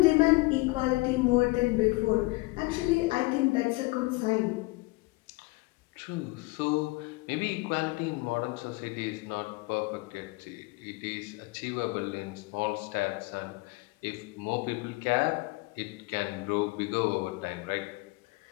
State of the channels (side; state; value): right; quieter; 23.7 dB